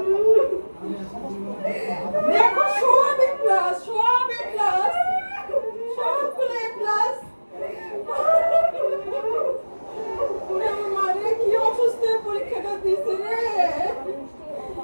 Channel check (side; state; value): both; inverted; correlation -1.00